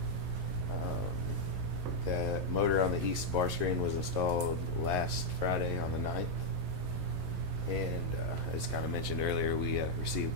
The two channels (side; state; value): left; late; 11 ms